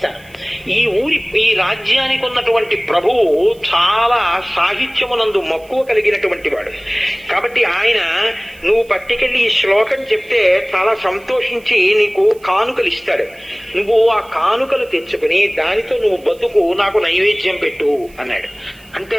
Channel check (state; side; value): noise; right; hiss, 27 dB below the sound